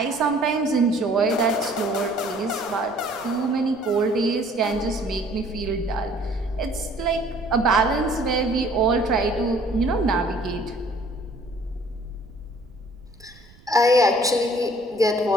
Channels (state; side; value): noise; right; rumble, 26 dB below the sound